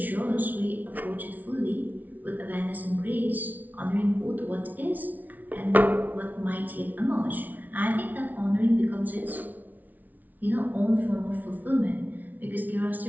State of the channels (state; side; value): late; left; 0.079 ms